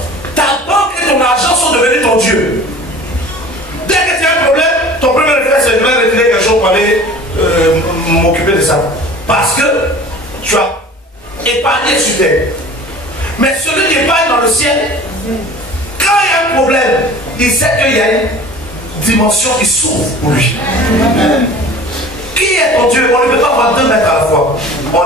Ta banque et ton argent sont devenus ton Dieu. Dès que tu as un problème, ton premier réflexe c'est de me retirer quelque chose pour aller m'occuper de ça. Parce que tu as épargné sur terre. Mais celui qui épargne dans le ciel, quand il y a un problème, il sait qu'il y a une dimension qui s'ouvre pour lui. Qui est ton Dieu? On ne peut pas avoir deux maîtres à la fois.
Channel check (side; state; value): both; normal; correlation 0.43